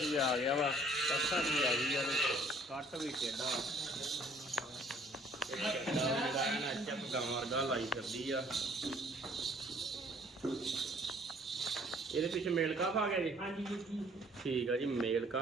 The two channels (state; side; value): normal; both; correlation 0.58